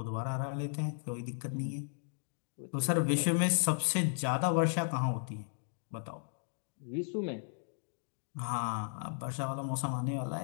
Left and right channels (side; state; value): right; silent; digital silence